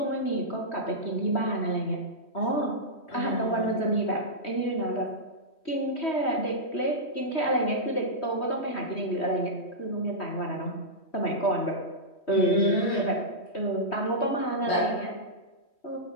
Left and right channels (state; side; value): late; right; 3.1 ms